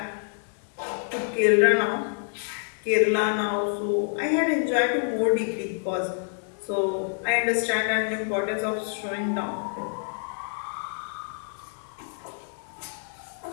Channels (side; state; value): right; silent; 60 dB below the other